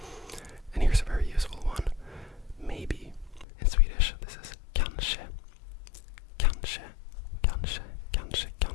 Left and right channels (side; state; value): right; drops out; at 3.5 s